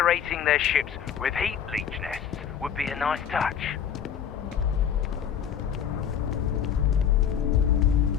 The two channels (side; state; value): right; quieter; 8.6 dB